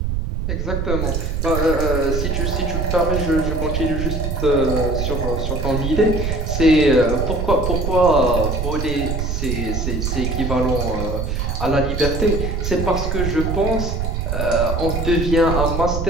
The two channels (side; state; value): right; noise; rumble, 1 dB below the sound